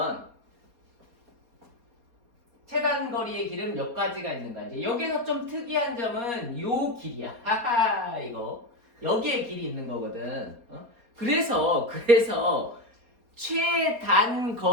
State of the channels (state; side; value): late; left; 4.2 ms